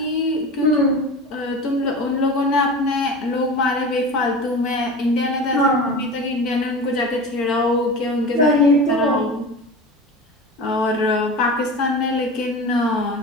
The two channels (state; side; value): normal; both; correlation 0.32